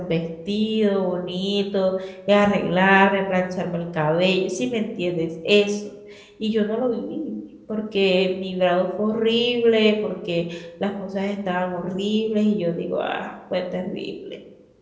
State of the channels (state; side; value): identical; both; correlation 1.00